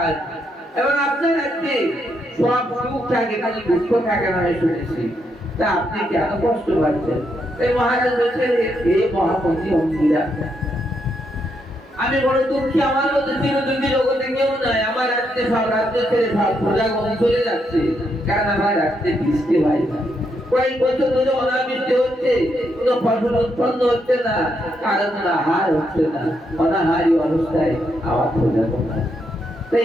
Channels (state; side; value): normal; both; correlation 0.79